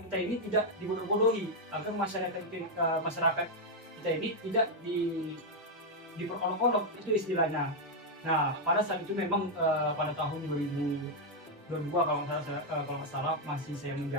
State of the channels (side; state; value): both; normal; correlation 0.00